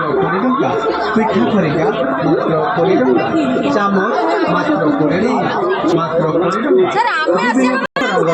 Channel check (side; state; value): both; identical; correlation 1.00